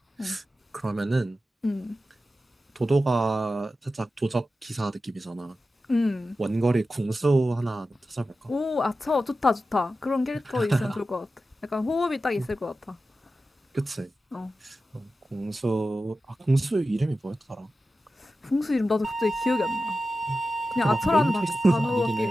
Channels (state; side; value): normal; both; correlation 0.93